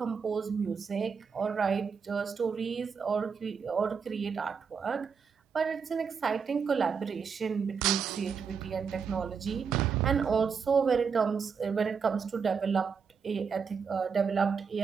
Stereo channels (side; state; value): left; quieter; 6.0 dB